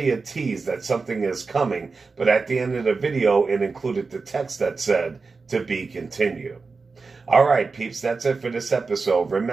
a tease that something is coming, but at the end of the video it included the text that said, "To be continued." Alright peeps, that's it for this episode.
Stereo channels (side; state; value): left; quieter; 4.3 dB